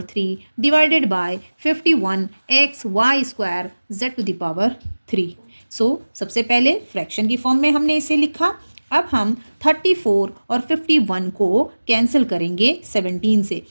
divided by 51xy² z⁴। सो सबसे पहले फ्रैक्शन की फॉर्म में हमने इसे लिखा। अब हम 34 और 51 को कैंसिल करेंगे 17 से,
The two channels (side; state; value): both; inverted; correlation -1.00